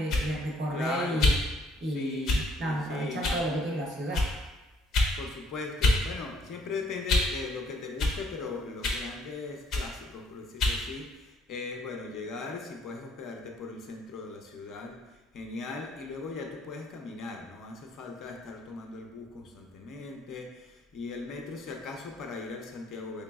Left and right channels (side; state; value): both; normal; correlation 0.65